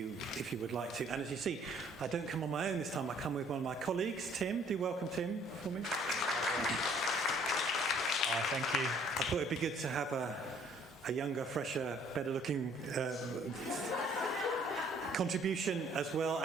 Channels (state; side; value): normal; both; correlation 0.59